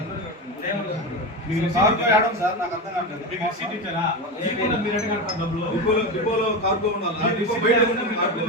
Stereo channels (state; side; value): normal; both; correlation 0.19